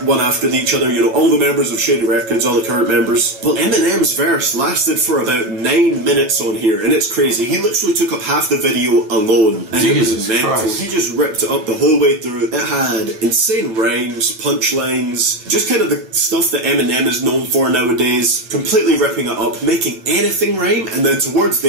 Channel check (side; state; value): left; late; 9.3 ms